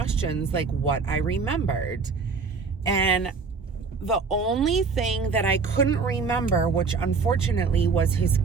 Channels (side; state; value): left; quieter; 4.9 dB